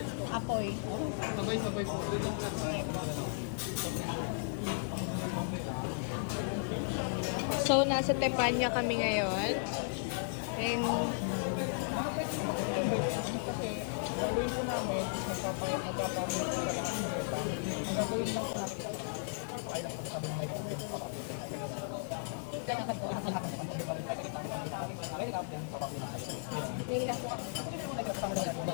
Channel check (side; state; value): right; silent; 54 dB below the other